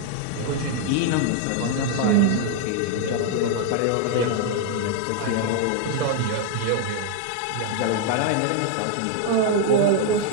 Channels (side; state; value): both; different; correlation 0.00